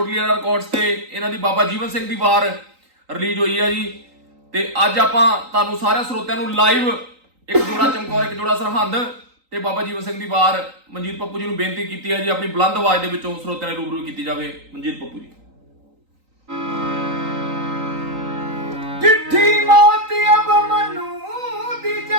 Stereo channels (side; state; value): left; late; 3.9 ms